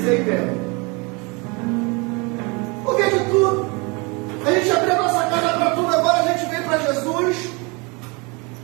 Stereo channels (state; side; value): quieter; left; 28.9 dB